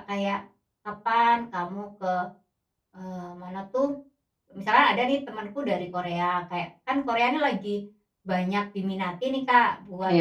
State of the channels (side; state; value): both; identical; correlation 1.00